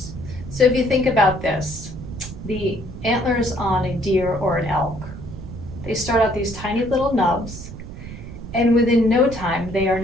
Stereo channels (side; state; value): right; noise; rumble, 11 dB below the sound